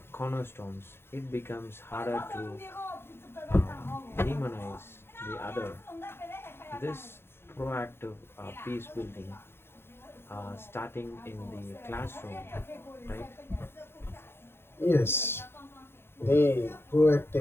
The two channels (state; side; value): late; right; 0.11 ms